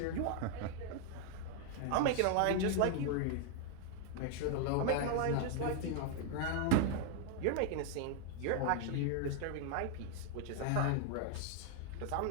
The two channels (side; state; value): both; different; correlation 0.00